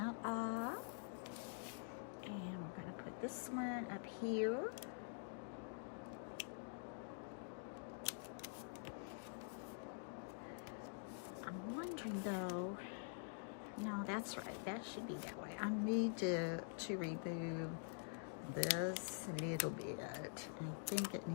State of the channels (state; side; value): silent; right; digital silence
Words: off, and we're going to put this one up here. I'm wondering though, no, that's right, that should be that way. I need to remove this a little bit. I think it